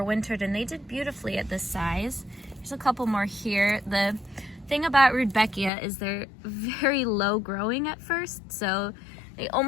and they did beautifully at this size. There's a couple more here. The thing about Rudbeckia is they're very low growing at first, so they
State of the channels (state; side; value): drops out; right; at 5.7 s